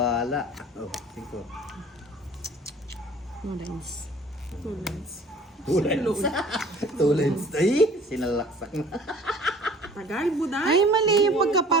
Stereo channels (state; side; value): normal; both; correlation 0.49